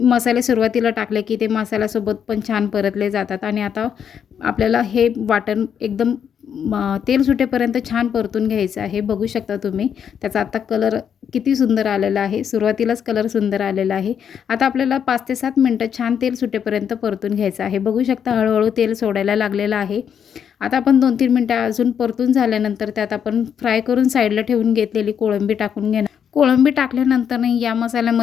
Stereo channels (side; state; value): right; quieter; 8.1 dB